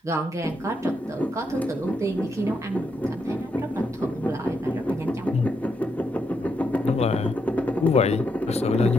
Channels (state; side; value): normal; both; correlation 0.80